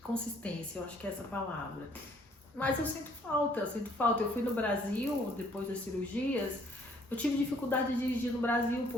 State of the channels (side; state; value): both; normal; correlation 0.62